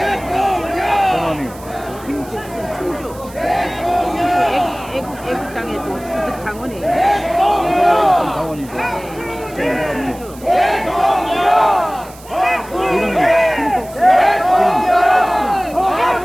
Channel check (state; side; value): noise; right; hiss, 21 dB below the sound